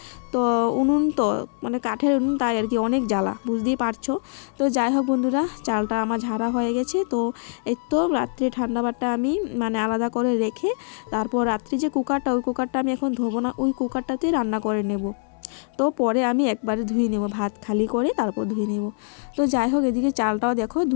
তো উনুন তো মানে কাঠের উনুন, তাই আর কি অনেক জ্বালা, বুঝতেই পারছো। তো যাই হোক বন্ধুরা, চালটা আমার ঝাড়া হয়ে গেছে। তো এই তো রাত্রে ঠান্ডা ভাতটা আমি মানে আলাদা করে রেখে তারপর রাত্রি যে কুকারটা, ওই কুকারটা আমি এখন ধোবো না, ওই কুকারটাতে রান্না করে নেব। তো পরে আমি একবারে ধুয়ে নেব, ভাত খালি করে তারপর ধুয়ে নেব। তো যাই হোক, এদিকে চালটাও দেখো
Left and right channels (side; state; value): right; silent; 61 dB below the other